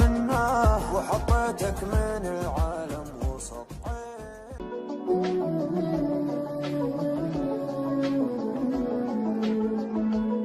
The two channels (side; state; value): both; identical; correlation 1.00